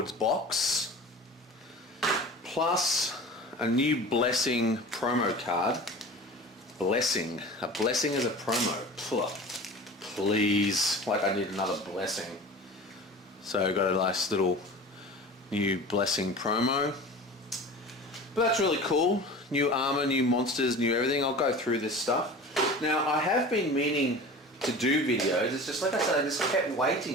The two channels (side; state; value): both; normal; correlation 0.37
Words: box, plus a new Blessing promo card. Blessing. A blessing is a promo. Please. Like I need another blessing. So I got a nice little new Blessing promo. But that's really cool. New armor, new monsters, new everything. I'll go through this stuff. Now I have been meaning to do videos. It's just like I said, I just kept